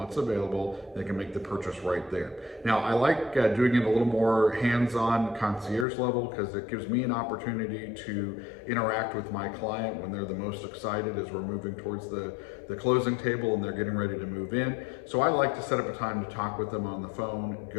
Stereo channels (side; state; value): right; drops out; at 5.9 s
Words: available. They can make the purchase right there. Now, I like doing it a little more hands-on concierge level because it gives me an opportunity to interact with my client when they're the most excited as we're moving towards the closing table and they're getting ready to move in. So I like to set up a time to talk with them on the phone,